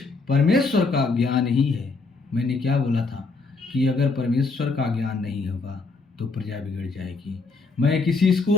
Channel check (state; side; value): quieter; right; 3.9 dB